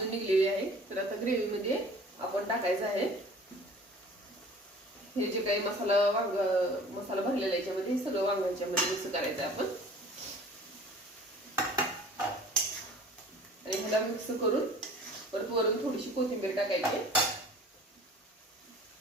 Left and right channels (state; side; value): normal; both; correlation 0.47